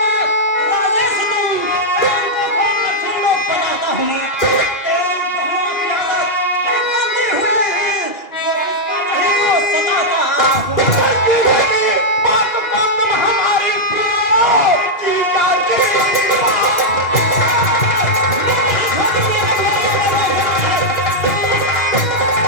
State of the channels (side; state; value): right; late; 2.8 ms